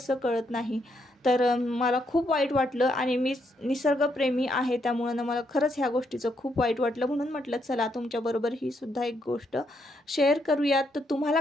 कळत नाही. तर मला खूप वाईट वाटलं आणि मी निसर्गप्रेमी आहे, त्यामुळं ना मला खरंच ह्या गोष्टीचं खूप वाईट वाटलं. म्हणून म्हटलं चला तुमच्याबरोबर ही सुद्धा एक गोष्ट शेअर करूयात. तर तुम्हाला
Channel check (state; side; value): normal; both; correlation 0.76